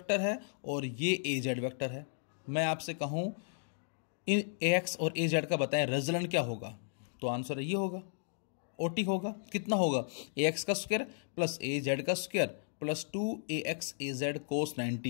है और ये ए जेड वैक्टर है। मैं आपसे कहूँ इन ए एक्स और ए जेड का बताएं रिजल्टेंट क्या होगा, तो आंसर ये होगा ओटी होगा। कितना होगा, ए एक्स का स्क्वायर प्लस ए जेड का स्क्वायर प्लस 2ax az कोस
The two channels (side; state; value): right; silent; digital silence